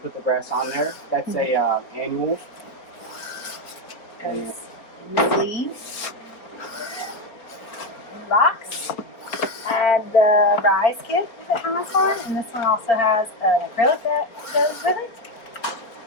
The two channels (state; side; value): late; right; 4.4 ms